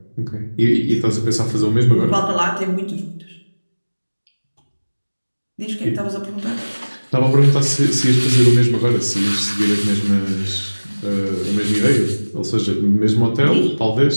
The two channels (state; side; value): inverted; both; correlation -1.00